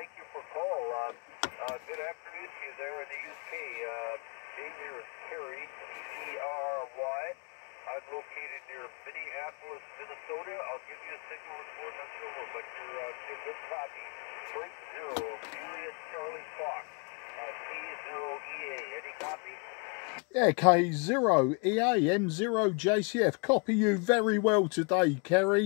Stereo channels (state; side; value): quieter; right; 34.4 dB